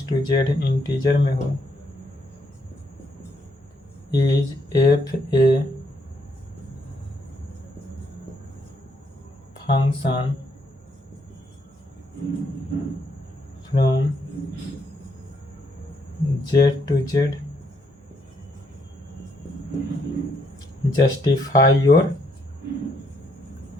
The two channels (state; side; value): normal; both; correlation 0.73